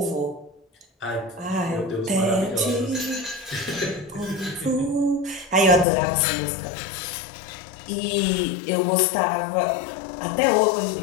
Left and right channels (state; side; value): drops out; right; at 5.9 s